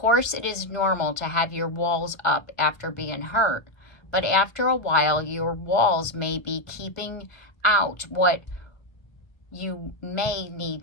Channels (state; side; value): late; right; 1.4 ms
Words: it is normal to have your walls up after being hurt, but after a while, your walls may be keeping out what you may need